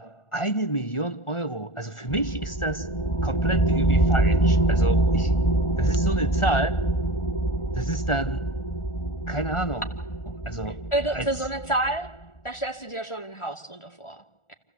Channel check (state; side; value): late; right; 1.4 ms